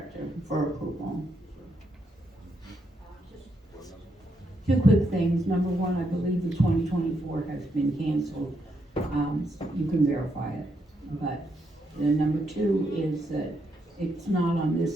for approval. Two quick things. Number one, I believe the 2024 has been canceled. You can verify it. But the number two is that it's not on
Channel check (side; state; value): both; normal; correlation 0.79